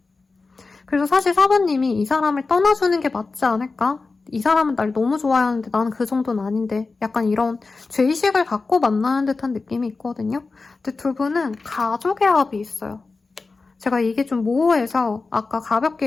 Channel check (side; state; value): right; quieter; 4.0 dB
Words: 그래서 사실 사부님이 이 사람을 떠나주는 게 맞지 않을까? 이 사람은 날 너무 좋아하는데 나는 그 정도는 아닌데 약간 이런 죄의식을 갖고 만나는 듯한 느낌이 있거든요. 근데 두 분은 가족의 합이 있어요. 제가 이게 좀 모호해서 아까